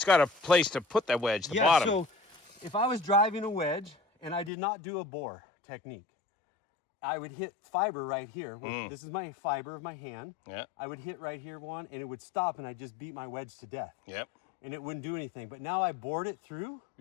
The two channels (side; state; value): right; drops out; at 4.5 s